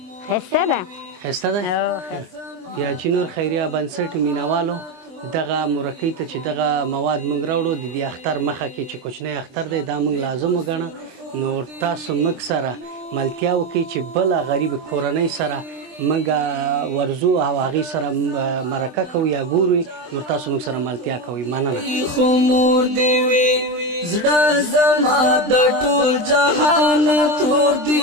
ښایسته ده ښایسته ده یا چې نور خیریه بنسټ مینهوالو دغه مرکۍ ته چې دغه مواد موږ راوړو د دې اختر مخه کې چې کوچنی اختر دی دا موږ لازم وګڼه نو تاسو موږ سره ملتیا وکړئ چې بله غریب کورنۍ سره موږ ورځو او هغې سره مرکه کوو یا ګورو نو تاسو موږ سره ملتیا کوئ مننه خو مور دې وي زړه زما د ټول جهان تور دې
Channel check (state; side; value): late; left; 23 ms